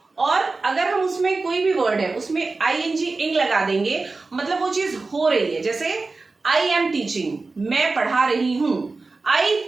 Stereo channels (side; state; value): left; quieter; 3.8 dB